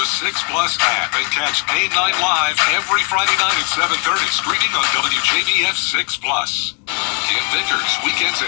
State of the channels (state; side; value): quieter; right; 37.8 dB